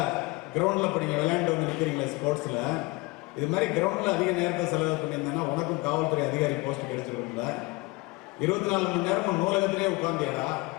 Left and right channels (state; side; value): quieter; right; 25.0 dB